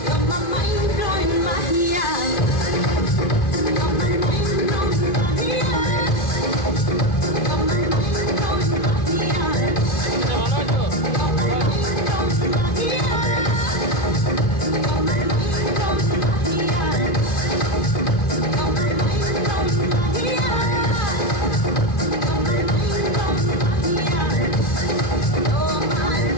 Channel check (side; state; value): right; late; 2.5 ms